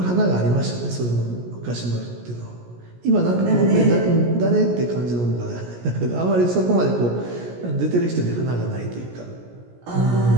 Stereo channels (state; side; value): late; left; 17 ms